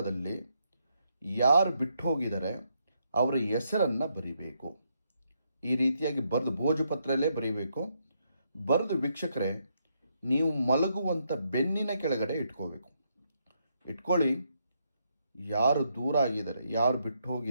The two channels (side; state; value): both; inverted; correlation -0.77